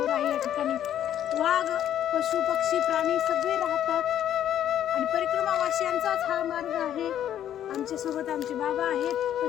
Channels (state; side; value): quieter; right; 10.7 dB